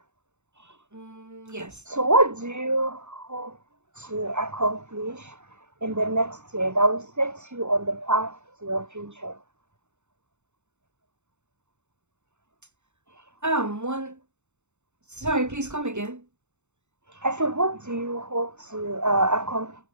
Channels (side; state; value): left; late; 0.83 ms